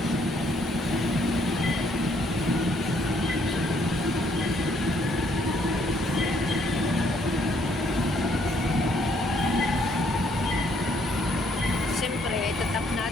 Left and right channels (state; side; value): normal; both; correlation 0.68